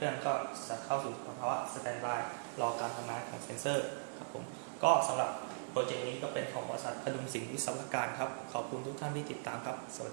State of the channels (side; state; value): left; silent; digital silence